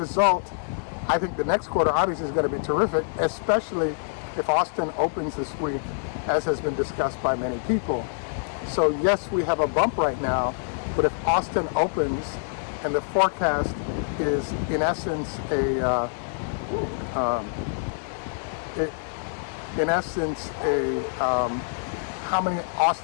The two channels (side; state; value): right; silent; 61 dB below the other